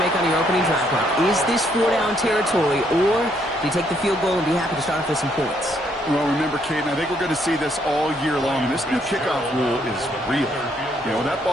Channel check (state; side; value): normal; both; correlation 0.71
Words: make on your opening drive, Brock. Is this 4-down territory, or do you take the field goal and be happy to start off with some points? Well, remember, Kate, and I think we're going to see this all year long. This new kickoff rule is real. You know, that